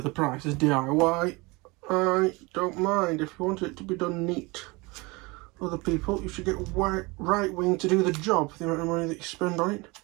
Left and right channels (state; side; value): quieter; left; 25.2 dB